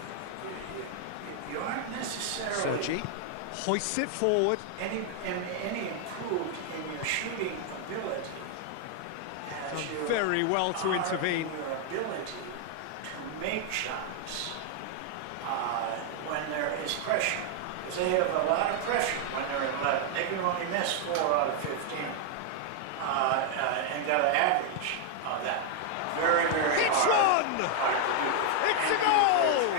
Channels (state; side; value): different; both; correlation 0.00